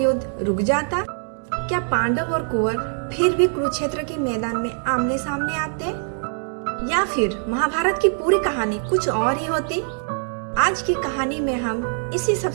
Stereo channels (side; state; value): left; silent; 58 dB below the other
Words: रुक जाता? क्या पांडव और कुंवर फिर भी कुरुक्षेत्र के मैदान में आमने सामने आते, या फिर महाभारत की पूरी कहानी कुछ और ही होती? आज की कहानी में हम इसी